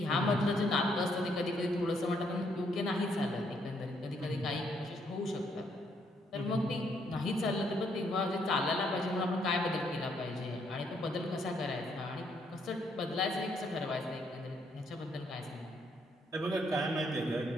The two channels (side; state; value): both; normal; correlation 0.71